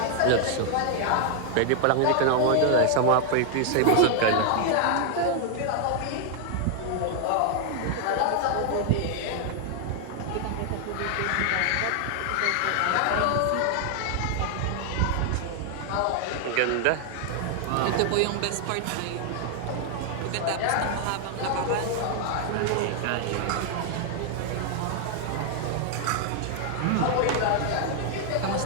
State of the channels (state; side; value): different; both; correlation 0.00